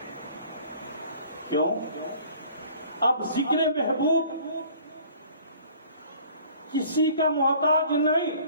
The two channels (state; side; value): inverted; both; correlation -0.52